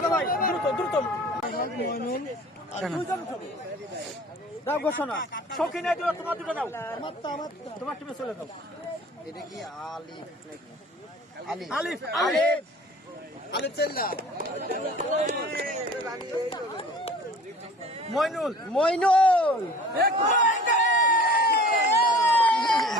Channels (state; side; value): normal; both; correlation 0.46